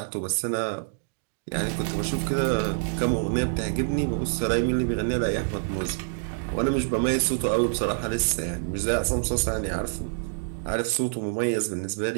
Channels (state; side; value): silent; left; digital silence